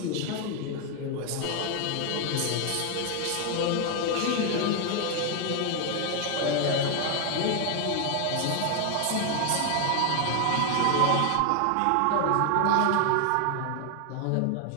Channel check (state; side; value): different; both; correlation 0.00